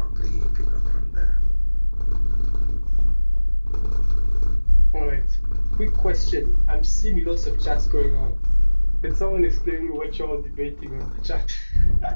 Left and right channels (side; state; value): both; inverted; correlation -1.00